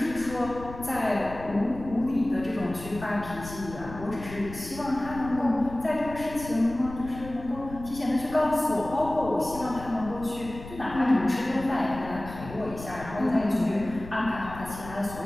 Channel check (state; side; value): noise; left; rumble, 13 dB below the sound